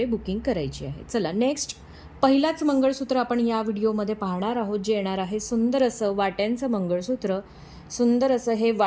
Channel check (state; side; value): identical; both; correlation 1.00